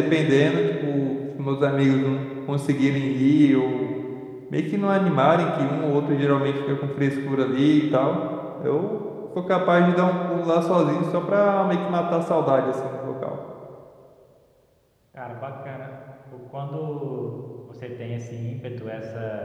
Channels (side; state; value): both; identical; correlation 1.00